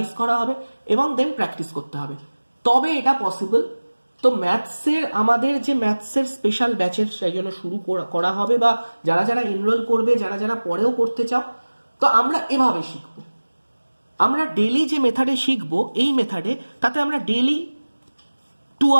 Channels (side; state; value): both; inverted; correlation -1.00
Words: করা হবে এবং দেন প্র্যাকটিস করতে হবে, তবে এটা পসিবল। তো ম্যাথসের আমাদের যে ম্যাথসের স্পেশাল ব্যাচের সেই জন্য শুরু করা হবে, বা যারা যারা এনরোল করবে, যারা যারা পরেও করতে চাও, তো আমরা এভাবে শিখবো। আমরা ডেলি যে মেথডে শিখবো, এই মেথডে তাতে আমরা ডেলি 2